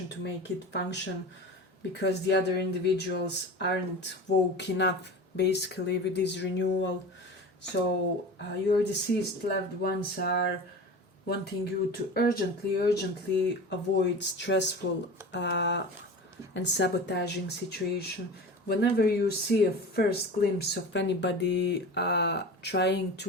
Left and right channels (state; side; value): normal; both; correlation 0.33